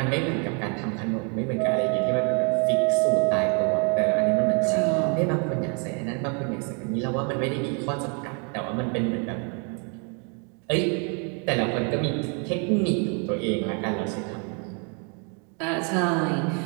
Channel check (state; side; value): quieter; left; 36.3 dB